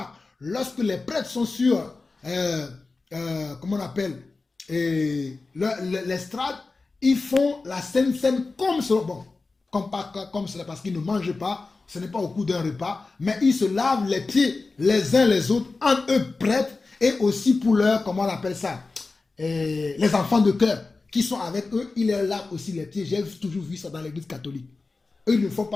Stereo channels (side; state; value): right; quieter; 3.8 dB